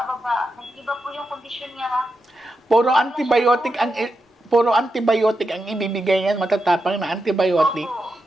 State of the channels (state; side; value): normal; both; correlation 0.87